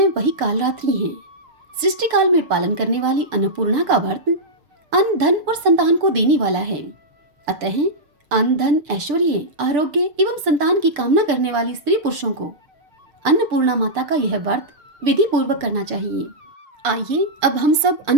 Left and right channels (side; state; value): left; late; 6.9 ms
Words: वही कालरात्रि हैं। सृष्टि काल में पालन करने वाली अन्नपूर्णा का व्रत अन्न, धन और संतान को देने वाला है। अतः अन्न, धन, ऐश्वर्य, आरोग्य एवं संतान की कामना करने वाली स्त्री पुरुषों को अन्नपूर्णा माता का यह व्रत विधि पूर्वक करना चाहिए। आइए अब हम सब